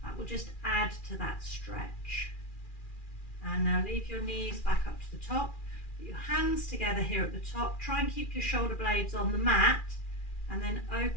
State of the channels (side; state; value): right; late; 2.4 ms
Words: that will just add to that stretch. And now leave your knees back up to the top, put your hands together here at the top, try and keep your shoulder blades on the mat, and then